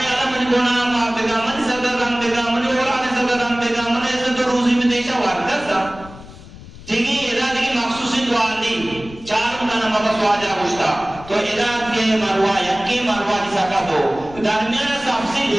اللہ من گناہ معاف بگا من صدر غم بگا من اولاد صدر غم بگا من عزت و روزی میں دیشا وارکت تھا ٹھیک ہے ادا دیکھ مخصوصی دعا نہیں چار مکانا مبس واجہ گشتا تو ادا کے مروا یکی مروا جسا کا دو درمیان سب سے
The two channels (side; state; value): left; noise; rumble, 18 dB below the sound